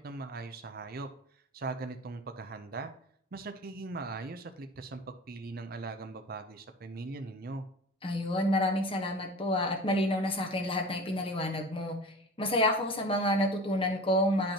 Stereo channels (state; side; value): normal; both; correlation 0.37